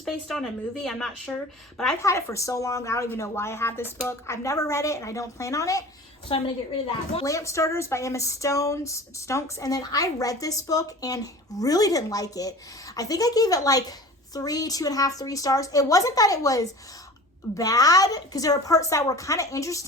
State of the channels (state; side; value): normal; both; correlation 0.40